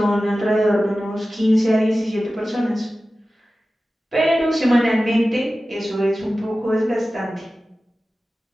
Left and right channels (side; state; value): both; normal; correlation 0.95